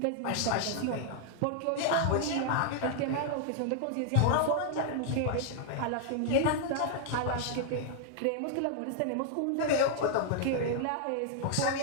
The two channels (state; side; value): different; both; correlation 0.00